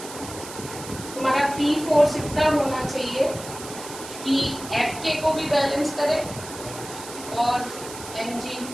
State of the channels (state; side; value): noise; right; hiss, 12 dB below the sound